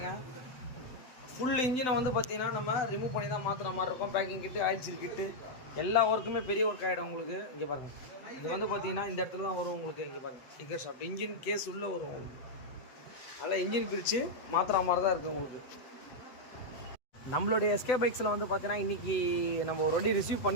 ஃபுல் இன்ஜினை வந்து பார்த்திங்கன்னா நம்ம ரிமூவ் பண்ணி தான் மாற்றுற மாதிரி இருக்கும். பேக்கிங் கிட்டு, ஆயில் சீல் கிட்டு, எல்லா ஒர்க்குமே பெரிய ஒர்க் ஆகிடும் உங்களுக்கு. இங்கே பாருங்கள், இது வந்து பார்த்திங்கன்னா இந்த இடத்துல தான் வரும் உங்களுக்கு. இங்கே பாருங்கள், கிக்கர் ஷாஃப்ட் இன்ஜின் கேஸ் உள்ளே வரும் உங்களுக்கு. அதனால் இன்ஜின் பிரித்து மாற்றுற மாதிரி தான் இருக்குது உங்களுக்கு. நம்மளுடைய எஸ்கே பைக்ஸில் வந்து பார்த்திங்கன்னா இன்றைக்கி நம்ம ஒரு வண்டி ரிசீவ்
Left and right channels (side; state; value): right; late; 8.0 ms